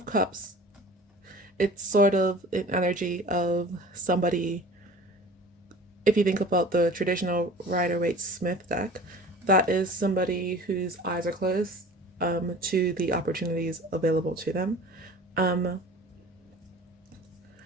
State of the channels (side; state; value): both; normal; correlation 0.42